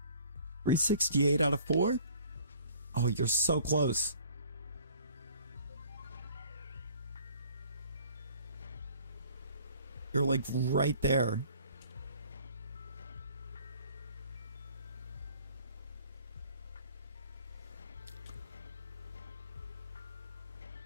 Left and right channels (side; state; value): both; inverted; correlation -0.53